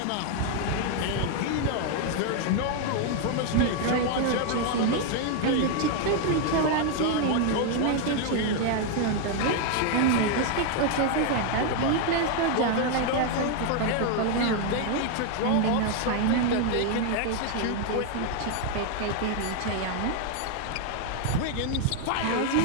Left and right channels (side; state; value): both; different; correlation 0.00